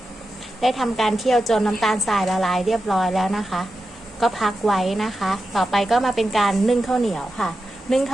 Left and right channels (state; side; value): normal; both; correlation 0.91